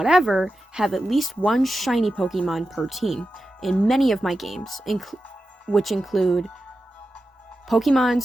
have at least 1 shiny Pokemon per team in many of my games, which include Pokemon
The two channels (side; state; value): both; normal; correlation 0.91